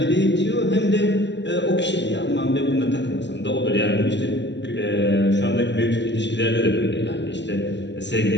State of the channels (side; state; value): right; late; 0.52 ms